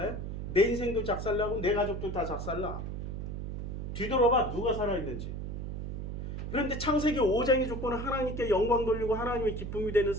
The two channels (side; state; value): right; noise; hum, 5 dB below the sound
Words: 내 인생도 작살나고 내 가족도 다 작살나. 뒤돌아봐, 누가 살아있는지. 그런데 창세기 5장의 조건은 하나님께 영광 돌리고 하나님의 기쁨이 되는